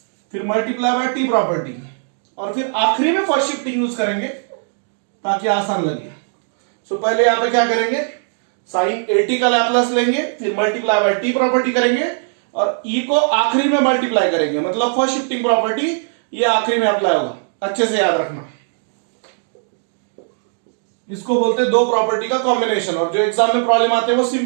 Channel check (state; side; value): silent; left; 67 dB below the other